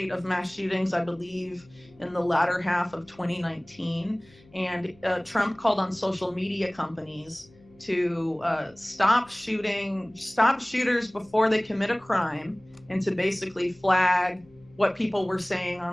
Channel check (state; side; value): noise; left; hum, 27 dB below the sound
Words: of mass shootings, I believe, in the latter half of 2019. And Trump called on social media companies to stop shooters before they commit a crime, and to basically flag what people were saying